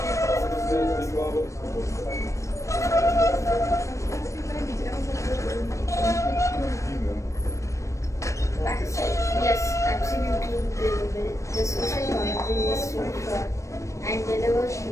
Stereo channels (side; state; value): right; late; 0.15 ms